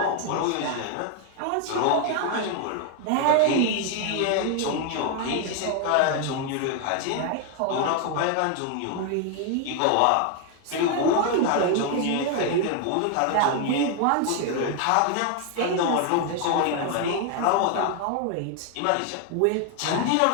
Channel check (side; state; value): both; different; correlation 0.00